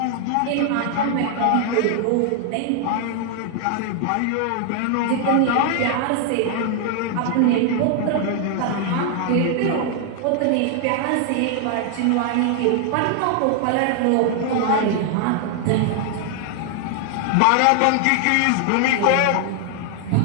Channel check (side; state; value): both; different; correlation 0.00